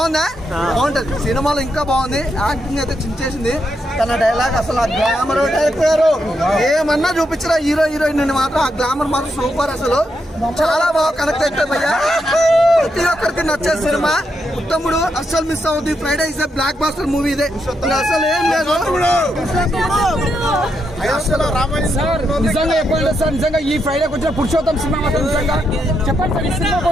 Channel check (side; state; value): both; normal; correlation 0.82